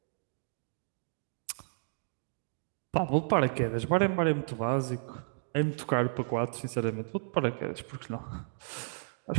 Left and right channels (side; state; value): left; silent; digital silence